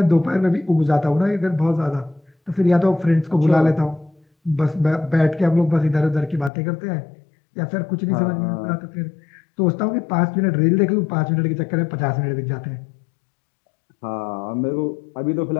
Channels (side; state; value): right; drops out; at 6.5 s